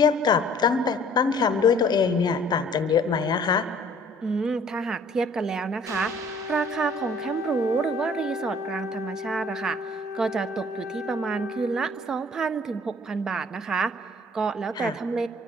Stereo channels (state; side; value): normal; both; correlation 0.55